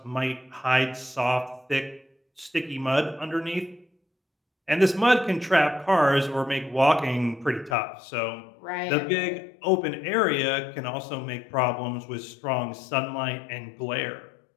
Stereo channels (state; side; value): drops out; right; at 7.8 s